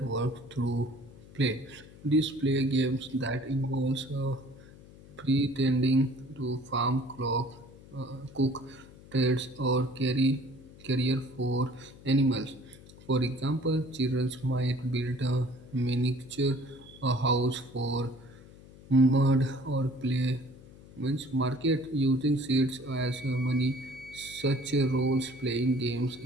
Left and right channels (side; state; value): left; noise; hum, 20 dB below the sound